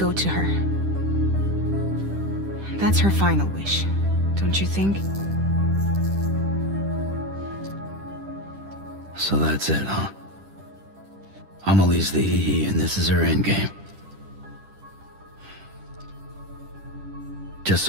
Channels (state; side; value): late; left; 10 ms